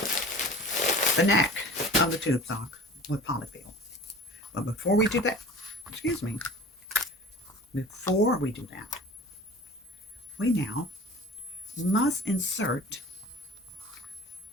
the neck of the tube sock with polyfill. But before we do that, excuse me, before we do that, we now must insert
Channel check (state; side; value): normal; both; correlation 0.41